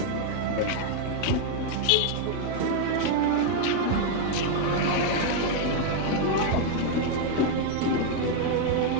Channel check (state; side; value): different; both; correlation 0.00